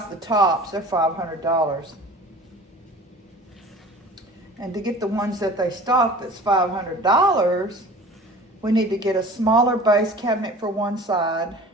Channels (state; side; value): normal; both; correlation 0.42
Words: the tops, they're $500. And to get the ones that they stock that's $500, we need to get a smaller base cabinet for one side.